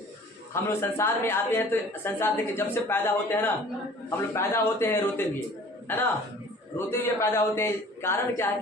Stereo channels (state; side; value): normal; both; correlation 0.48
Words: हम लोग संसार में आते हैं तो संसार देखिए, जब से पैदा होते हैं ना, हम लोग पैदा होते हैं रोते हुए, है ना, रोते हुए पैदा होते हैं। कारण क्या है